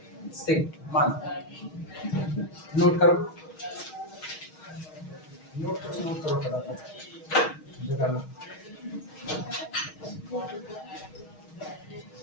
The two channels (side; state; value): right; late; 6.4 ms